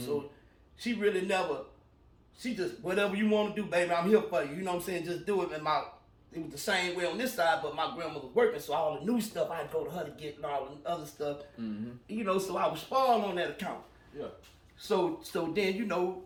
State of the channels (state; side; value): identical; both; correlation 1.00